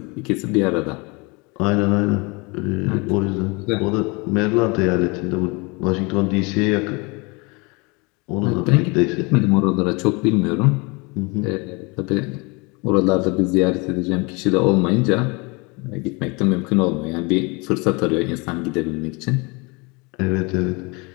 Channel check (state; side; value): quieter; right; 28.2 dB